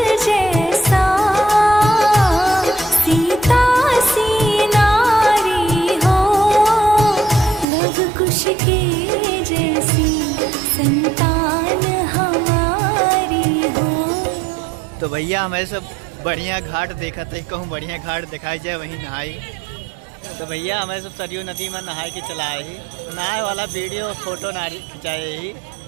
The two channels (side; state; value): left; drops out; at 7.7 s